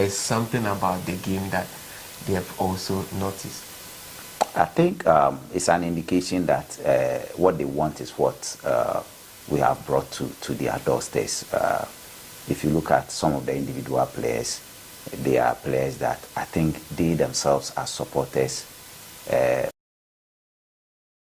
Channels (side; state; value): both; identical; correlation 1.00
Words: something about the game that they have also noticed? I think it's an indication that what they want is what we have brought to their doorsteps. If you look at some of the individual players, they are players that I think they themselves are supporters.